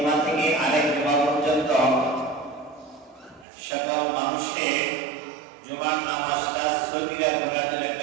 থেকে আরেক জুমা পর্যন্ত সকল মানুষের জুমার নামাজটা সগীরা গুনাহের জন্য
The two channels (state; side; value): drops out; left; at 3.5 s